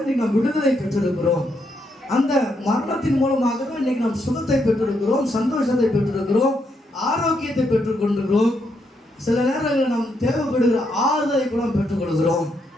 இன்னைக்கு நாம் விடுதலை பெற்றிருக்கிறோம். அந்த மரணத்தின் மூலமாக தான் இன்னைக்கு நாம் சுகத்தை பெற்றிருக்கிறோம், சந்தோஷத்தை பெற்றிருக்கிறோம், ஆரோக்கியத்தை பெற்றுக் கொண்டிருக்கிறோம். சில நேரங்களில் நாம் தேவைப்படுகிற ஆறுதலை கூட பெற்றுக்கொள்கிறோம்.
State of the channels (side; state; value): both; normal; correlation 0.78